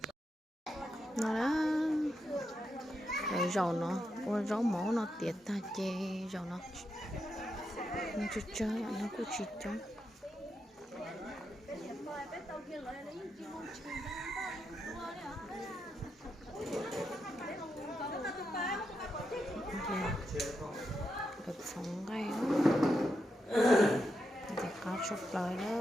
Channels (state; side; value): normal; both; correlation 0.84